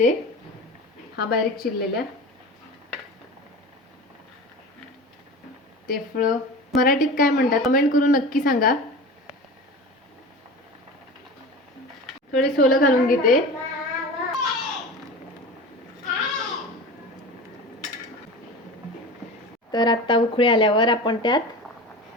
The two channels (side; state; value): both; normal; correlation 0.33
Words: हा बारीक चिरलेल्या. ते फळं मराठीत काय म्हणतात कमेंट करून नक्की सांगा. थोडे सोलं घालून घेते. तर आता उकळी आल्यावर आपण त्यात